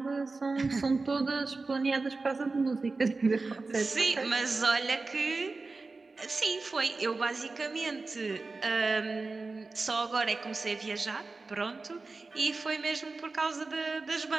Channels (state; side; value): quieter; left; 3.8 dB